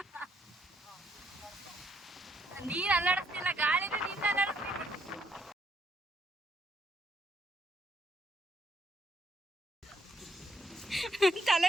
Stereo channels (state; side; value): normal; both; correlation 0.72